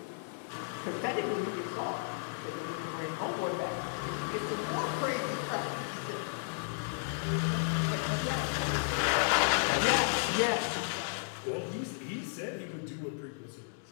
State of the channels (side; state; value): right; silent; digital silence